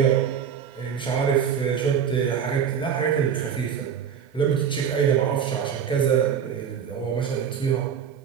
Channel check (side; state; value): left; quieter; 7.9 dB